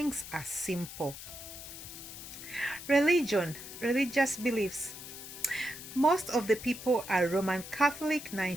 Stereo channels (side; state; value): left; noise; hiss, 12 dB below the sound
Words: are simple. Religion, religious beliefs. Most of the people are Roman Catholic,